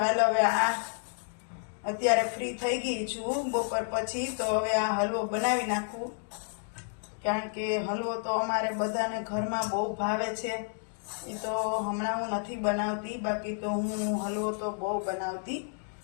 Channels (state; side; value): silent; right; 57 dB below the other